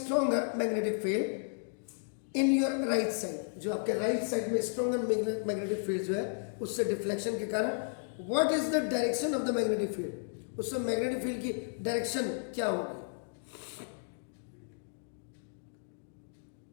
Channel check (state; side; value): silent; right; digital silence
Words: magnetic field in your right side. जो आपके राइट साइड में स्ट्रॉन्गर मैग्नेटिक फील्ड जो है उससे डिफ्लेक्शन के कारण what is the direction of the magnetic field, उससे मैग्नेटिक फील्ड की डायरेक्शन क्या होगी.